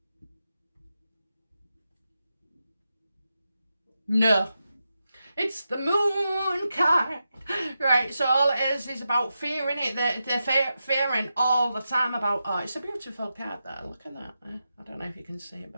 No. It's the moon card. Right, so all it is about fearing it. They're fearing all the time about, oh, it's a beautiful card there. Look at that. I don't know if you can see it,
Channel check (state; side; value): inverted; both; correlation -0.89